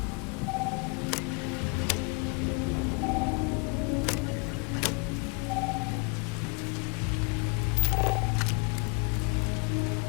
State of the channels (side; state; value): right; quieter; 31.7 dB